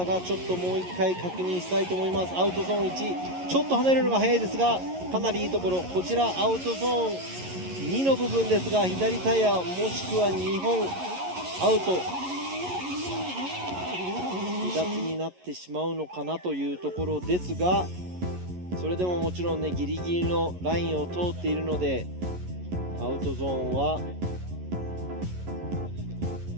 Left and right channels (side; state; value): left; late; 11 ms